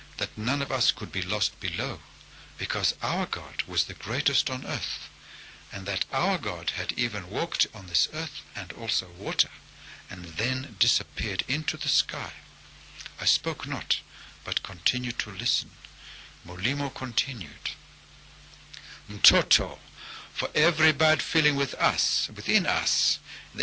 that none of us could be lost below, because our God was the greatest on earth, and that our God had even walked on this earth and also water, and then disappeared into the sky. I spoke not, but continued to listen. Molimo continued, "Mtoto, for every bad feeling within us,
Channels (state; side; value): identical; both; correlation 1.00